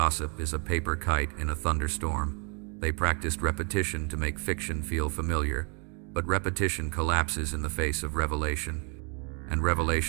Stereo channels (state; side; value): quieter; left; 36.2 dB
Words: is a paper kite in a thunderstorm. They practiced repetition to make fiction feel familiar, but repetition collapses in the face of revelation. And